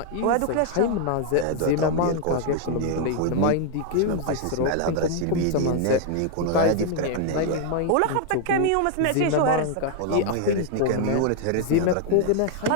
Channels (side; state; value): both; different; correlation 0.00